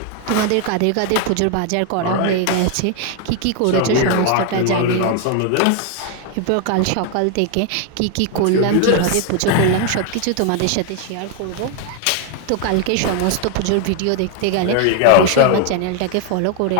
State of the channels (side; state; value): both; different; correlation 0.01